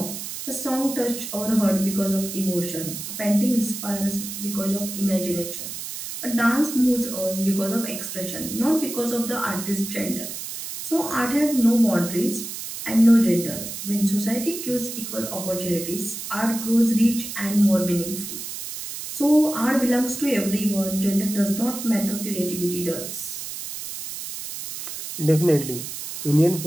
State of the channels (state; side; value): noise; right; hiss, 8 dB below the sound